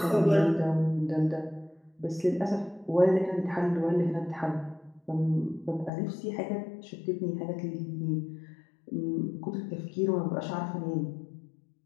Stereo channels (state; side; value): drops out; right; at 5.9 s